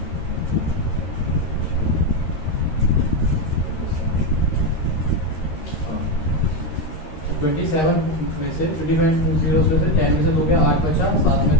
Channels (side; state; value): right; late; 13 ms